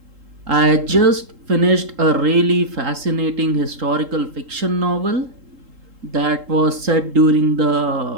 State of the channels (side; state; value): left; late; 3.8 ms